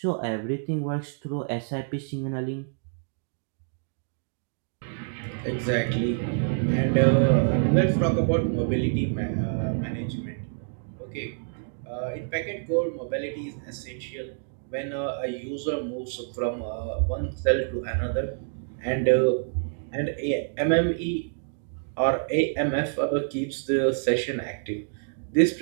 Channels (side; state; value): left; silent; digital silence